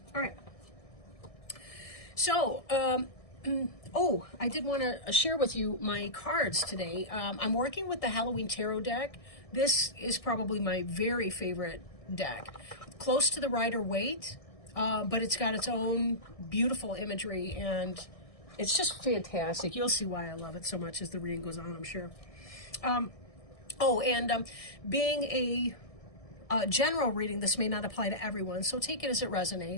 All right. So, I did want to share with you my cards today. I'm working with the Halloween Tarot deck. This is probably my very favorite deck. Close to the Rider-Waite, but it's got its own beautiful imagery, and it's just fantastic. You'll see why I love it so much as the reading goes on, I'm sure. Being a general reading, this may not apply to everyone, so take it as it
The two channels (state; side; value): late; right; 1.6 ms